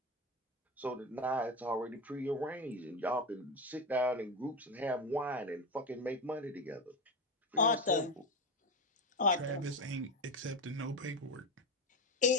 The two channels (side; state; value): both; normal; correlation 0.18